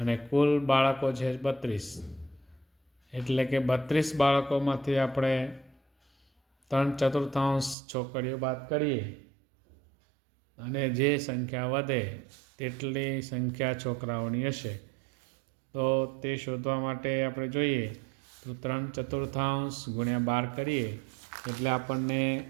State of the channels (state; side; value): drops out; left; at 7.8 s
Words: કુલ બાળકો છે 32, એટલે કે 32 બાળકોમાંથી આપણે 3/4 છોકરીઓ બાદ કરીએ અને જે સંખ્યા વધે તેટલી સંખ્યા છોકરાઓની હશે. તો તે શોધવા માટે આપણે જોઈએ તો 3/4 ગુણ્યા 12 કરીએ એટલે આપણને